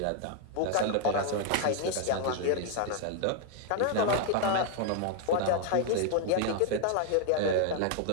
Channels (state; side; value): different; both; correlation 0.00